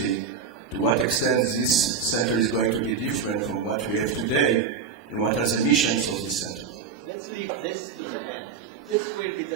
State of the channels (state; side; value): quieter; left; 6.1 dB